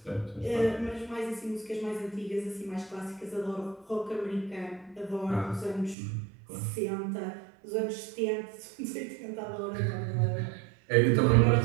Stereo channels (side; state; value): left; drops out; at 6.0 s